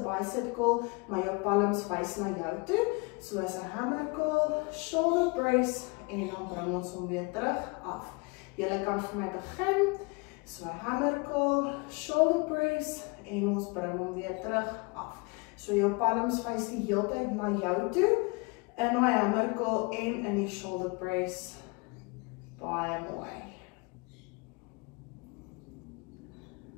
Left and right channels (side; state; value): right; quieter; 29.2 dB